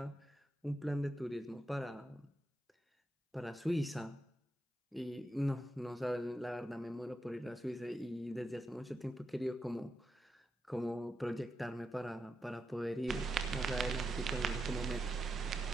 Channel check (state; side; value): normal; both; correlation 0.86